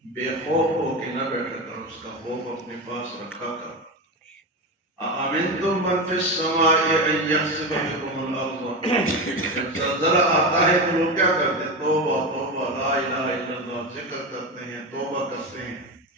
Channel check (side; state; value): both; normal; correlation 0.19